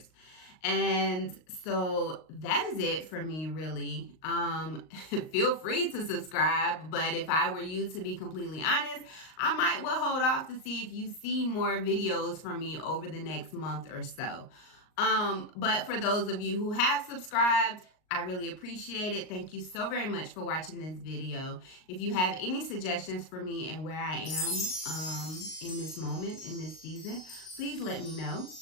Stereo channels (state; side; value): late; right; 38 ms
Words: And so that is it for me, really. Feel free to subscribe, but if I were you, to be completely honest, I might well hold off to see if you see more videos from me over the next month or so. But for those of you who have subscribed, I really appreciate it. Thank you so very much for watching this video. If you have any suggestions for me and where I am in this moment, in this season, please let me know.